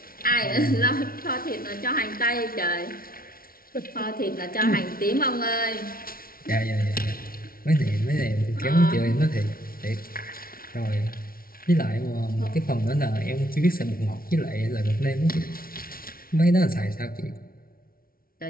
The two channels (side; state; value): right; late; 0.43 ms